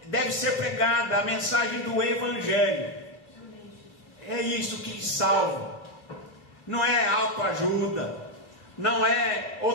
deve ser pregada, a mensagem do Evangelho. É isso que salva, não é autoajuda, não é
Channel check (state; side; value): late; right; 2.5 ms